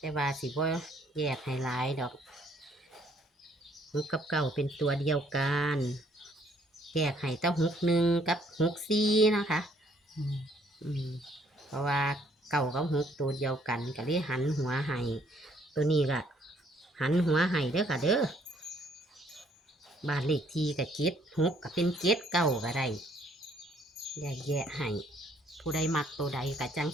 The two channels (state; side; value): normal; both; correlation 0.65